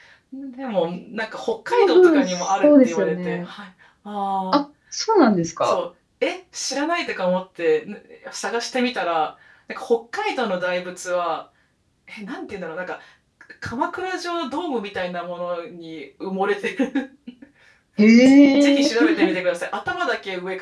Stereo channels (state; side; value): identical; both; correlation 1.00